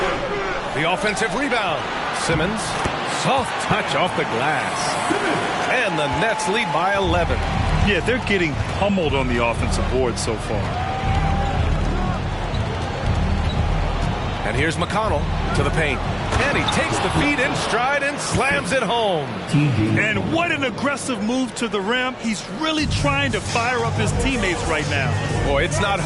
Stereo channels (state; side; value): identical; both; correlation 1.00